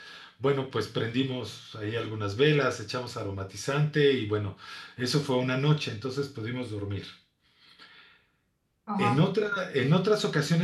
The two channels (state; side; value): identical; both; correlation 1.00